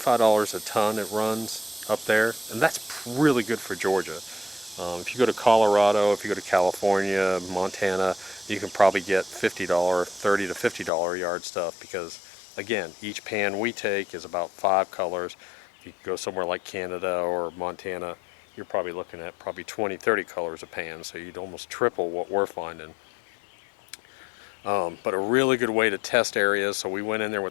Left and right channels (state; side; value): drops out; right; at 10.9 s